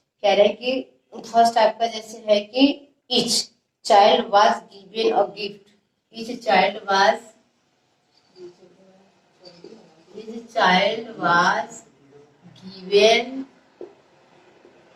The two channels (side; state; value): both; identical; correlation 1.00